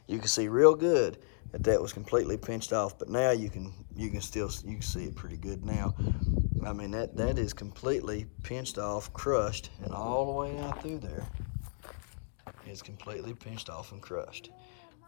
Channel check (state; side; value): silent; right; digital silence